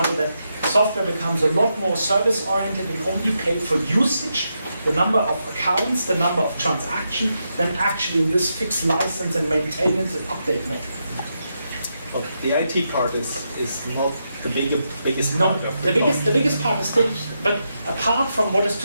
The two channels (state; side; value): inverted; both; correlation -0.84